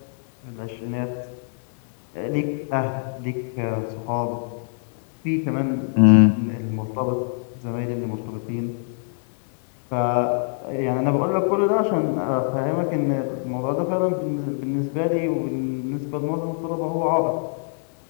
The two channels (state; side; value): silent; right; digital silence